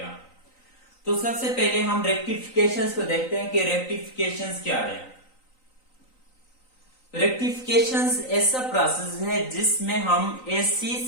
तो सबसे पहले हम रेक्टिफिकेशंस को देखते हैं कि रेक्टिफिकेशंस क्या है। रेक्टिफिकेशंस ऐसा प्रोसेस है जिसमें हम एसी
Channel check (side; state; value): right; late; 3.9 ms